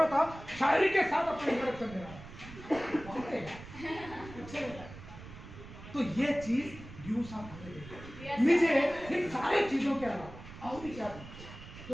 था, शायरी के साथ अपना इंट्रोडक्शन दे रहा। तो ये चीज ड्यू साहब मुझे इन सारी चीजों के अलावा और भी क्या,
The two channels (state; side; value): noise; right; rumble, 15 dB below the sound